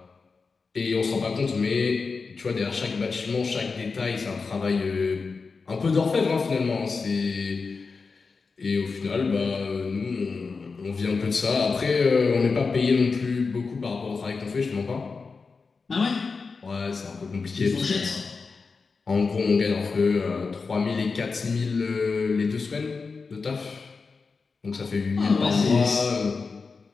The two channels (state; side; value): quieter; right; 4.6 dB